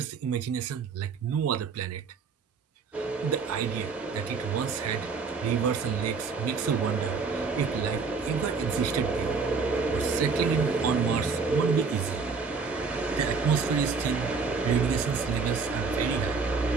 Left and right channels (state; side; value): quieter; left; 5.0 dB